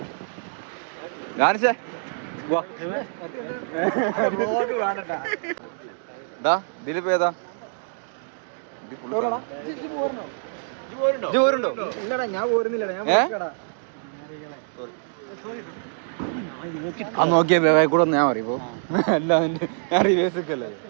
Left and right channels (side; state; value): left; silent; digital silence